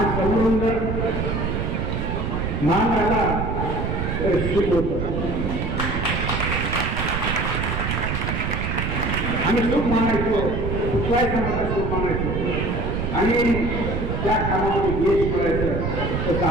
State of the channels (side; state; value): right; noise; rumble, 1 dB below the sound